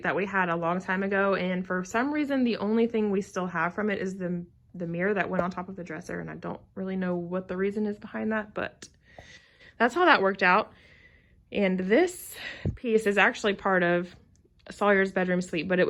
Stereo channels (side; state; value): both; identical; correlation 1.00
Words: that we had a long time ago, and for some reason the only thing we still have from it is the mirror that went on top of the dresser, and I don't really know what the reason is behind that, but that's how that worked out. And this piece is actually part of Sawyer's bedroom suite, but